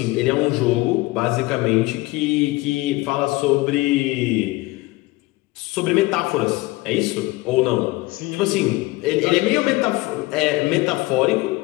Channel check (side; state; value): right; quieter; 21.0 dB